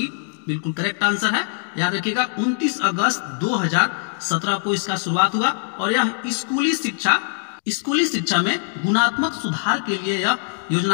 बिल्कुल करेक्ट आंसर है। याद रखिएगा 29 अगस्त 2017 को इसका शुरुआत हुआ, और यह स्कूली शिक्षा में गुणात्मक सुधार के लिए यह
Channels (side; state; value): right; silent; digital silence